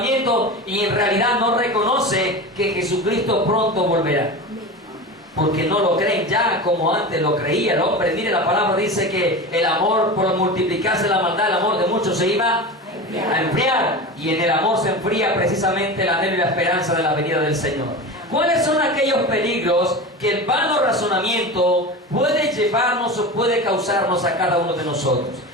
y en realidad no reconoce que Jesucristo pronto volverá. Porque no lo creen ya como antes lo creía el hombre. Mire, la palabra dice que el amor, por multiplicarse la maldad, el amor de muchos se iba a enfriar. Y en el amor se enfría precisamente el anhelo y la esperanza de la venida del Señor. ¿Cuáles son aquellos peligros que el vano razonamiento puede llevarnos o puede causarnos a cada uno de nosotros?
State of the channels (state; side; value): normal; both; correlation 0.28